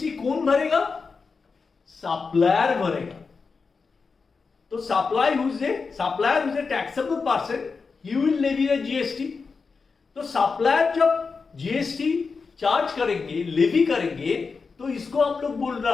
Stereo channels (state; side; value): quieter; right; 4.8 dB